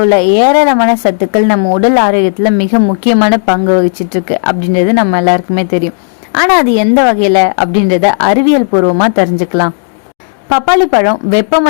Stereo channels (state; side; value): silent; right; digital silence